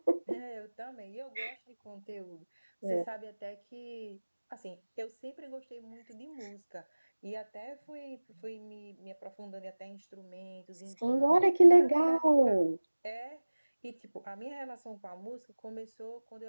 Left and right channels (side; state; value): both; inverted; correlation -1.00